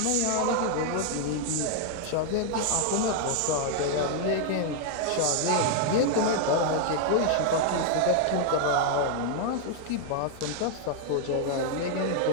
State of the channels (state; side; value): different; both; correlation 0.00